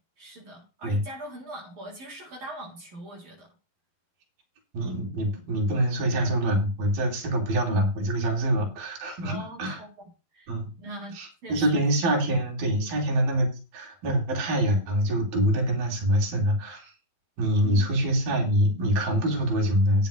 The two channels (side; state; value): left; late; 11 ms